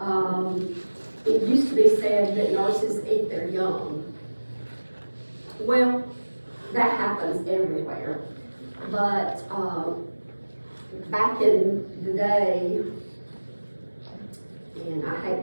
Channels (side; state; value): both; inverted; correlation -1.00